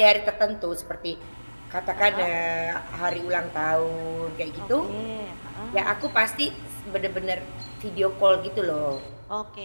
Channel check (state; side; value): inverted; both; correlation -1.00